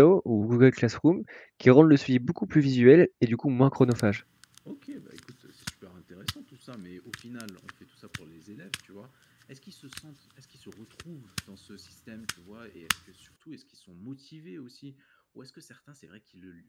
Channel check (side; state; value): both; identical; correlation 1.00